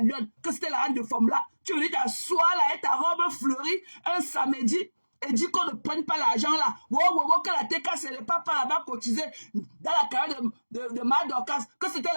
Lyon, que c'était la reine de femme là, tu venais t'asseoir là avec ta robe fleurie un samedi. Et dit qu'on ne prenne pas l'argent là. Que la TKC n'est pas là-bas cotisé dans la carrière de Madorcas, que c'était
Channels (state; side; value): inverted; both; correlation -1.00